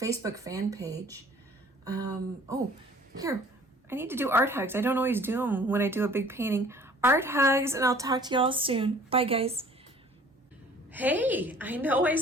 fan page. Oh, here, I need to do art hugs. I don't always do them when I do a big painting. Art hugs, and I'll talk to y'all soon. Bye, guys. Hey, I know I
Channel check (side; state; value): both; normal; correlation 0.52